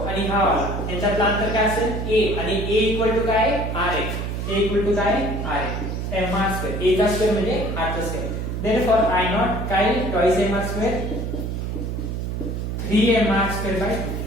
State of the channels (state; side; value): noise; right; hum, 3 dB below the sound